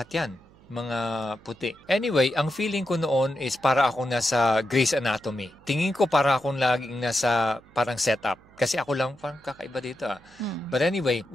yan, mga puti. Anyway, ang feeling ko noon is para akong nasa Grey's Anatomy. Tingin ko para akong laging nasa parang setup. Kasi ako lang parang kakaiba dito. But anyway,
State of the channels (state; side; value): noise; right; hum, 27 dB below the sound